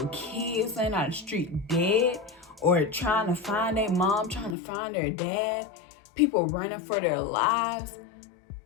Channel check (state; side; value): drops out; right; at 4.5 s